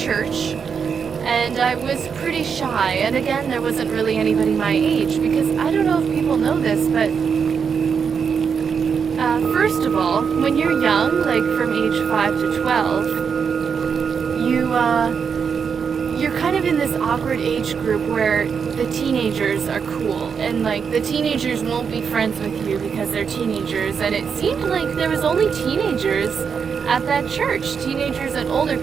and I was pretty shy, and again, there wasn't really anybody my age, because I don't know if people know this, but first of all, when you're young, like from age 5 to 12, you're kind of in this awkward age group where the teenagers are cool, and like the teenagers won't be friends with you because they're teenagers, and it seemed like there was only teenagers at that church, teenagers and older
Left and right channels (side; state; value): left; quieter; 6.4 dB